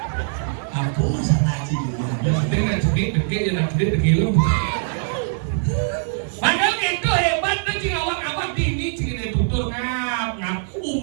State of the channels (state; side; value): silent; left; 63 dB below the other